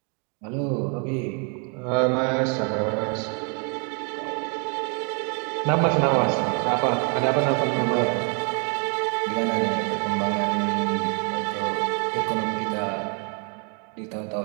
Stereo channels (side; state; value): left; quieter; 37.8 dB